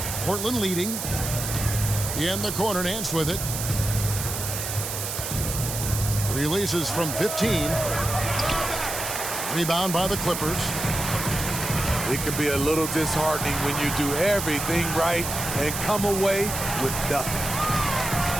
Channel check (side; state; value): right; noise; hiss, 4 dB below the sound